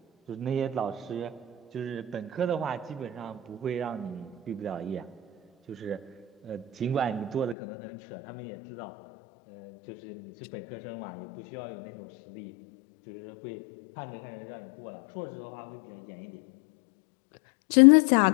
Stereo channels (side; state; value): right; drops out; at 7.6 s